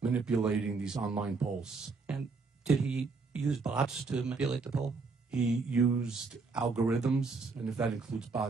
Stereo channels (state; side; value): quieter; left; 4.3 dB